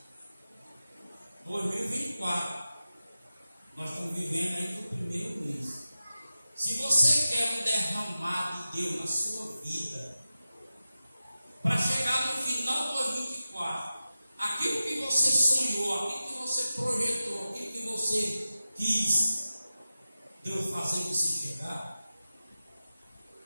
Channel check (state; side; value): inverted; both; correlation -0.93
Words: 2024, nós estamos vivendo aí no primeiro mês. Se você quer um derramar de Deus na sua vida, para chegar no final de 2024, aquilo que você sonhou, aquilo que você projetou, aquilo que você quis, Deus fazer você chegar,